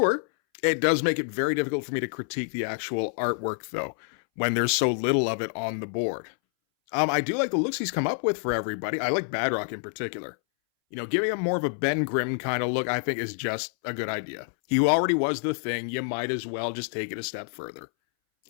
It does make it very difficult for me to critique the actual artwork, though, when there's so little of it on the board. I do like the looks he's come up with for everybody. I like Badrock in particular. Giving him more of a Ben Grimm kind of look, I think, is just a good idea. He already was the Thing. You might as well just take it a step further.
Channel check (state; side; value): silent; right; 60 dB below the other